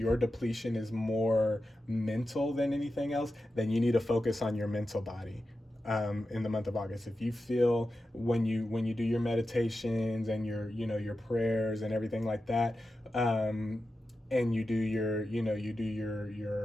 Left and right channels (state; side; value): normal; both; correlation 0.91